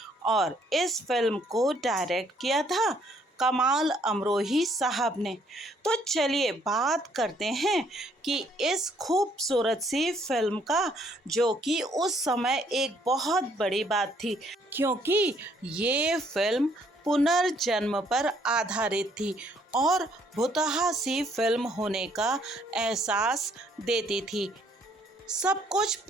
और इस फिल्म को डायरेक्ट किया था कमाल अमरोही साहब ने। तो चलिए बात करते हैं कि इस खूबसूरत सी फिल्म का, जो कि उस समय एक बहुत बड़ी बात थी क्योंकि ये फिल्म पुनर्जन्म पर आधारित थी और भुतहा सी फिल्म होने का एहसास देती थी। सब कुछ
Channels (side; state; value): both; normal; correlation 0.66